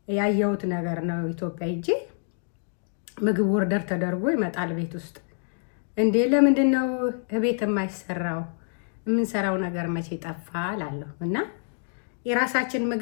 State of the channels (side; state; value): right; silent; digital silence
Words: ያየሁት ነገር ነው። ኢትዮጵያ ሂጄ ምግብ ወርደር ተደርጎ ይመጣል ቤት ውስጥ። እንዴ ለምንድን ነው ቤት የማይሰራው? የምንሰራው ነገር መቼ ጠፋ እላለሁ። እና የራሳችን